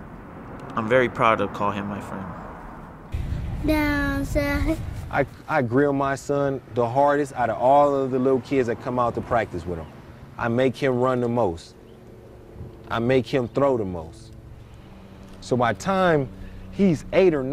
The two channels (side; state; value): both; identical; correlation 1.00